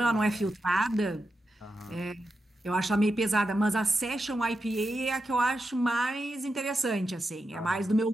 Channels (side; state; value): both; normal; correlation 0.88